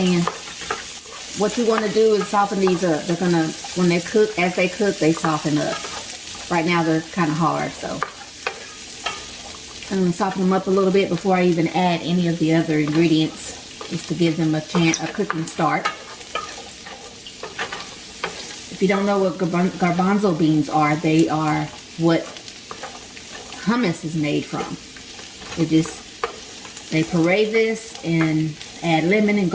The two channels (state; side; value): identical; both; correlation 1.00